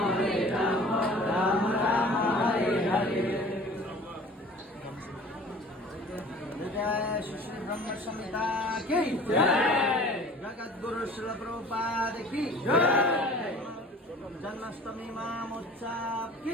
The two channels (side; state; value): both; normal; correlation 0.46